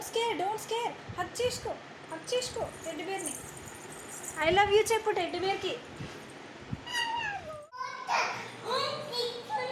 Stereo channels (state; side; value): identical; both; correlation 1.00